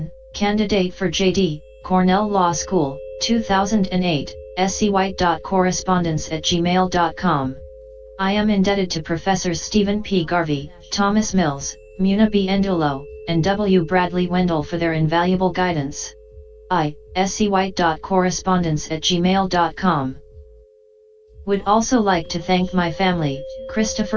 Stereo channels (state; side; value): identical; both; correlation 1.00